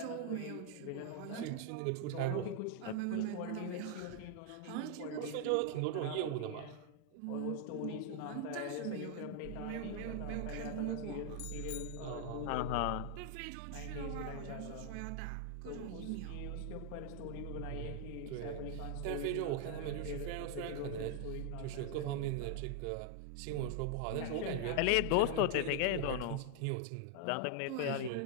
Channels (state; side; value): different; both; correlation 0.00